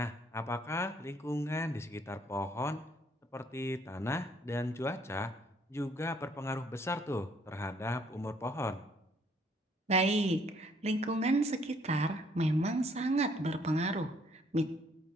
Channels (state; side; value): normal; both; correlation 0.64